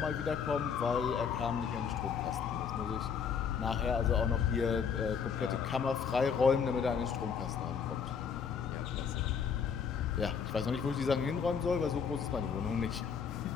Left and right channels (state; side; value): quieter; right; 6.6 dB